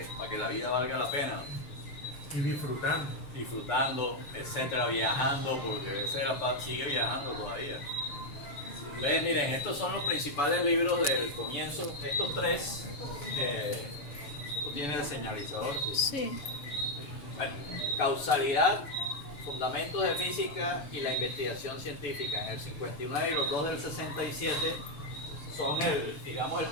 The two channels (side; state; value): right; late; 6.9 ms